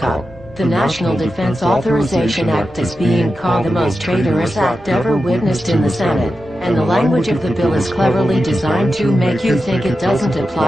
The National Defense Authorization Act is being called the most traitorous act ever witnessed in the Senate, and the language of the bill is cleverly designed to make you think it doesn't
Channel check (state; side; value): normal; both; correlation 0.90